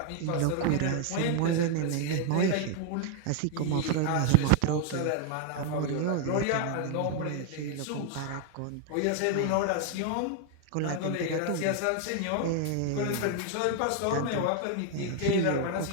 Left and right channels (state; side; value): different; both; correlation 0.00